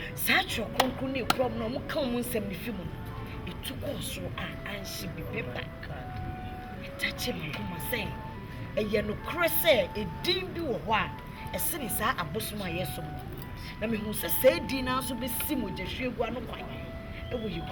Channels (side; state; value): both; identical; correlation 1.00